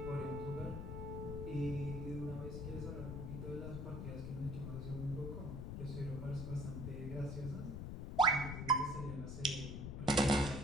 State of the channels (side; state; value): left; noise; rumble, 5 dB below the sound